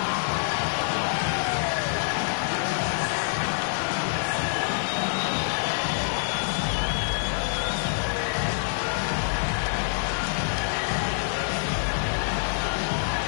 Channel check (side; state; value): right; silent; digital silence